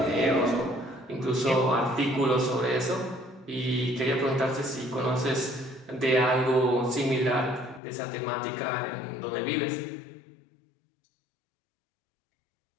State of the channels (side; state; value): right; drops out; at 7.8 s